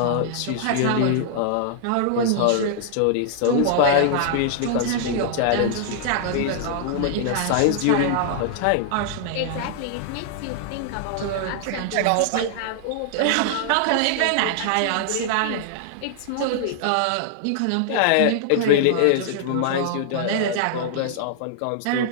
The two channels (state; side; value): different; both; correlation -0.01